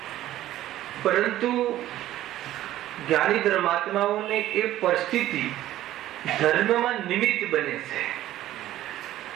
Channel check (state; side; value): quieter; left; 13.9 dB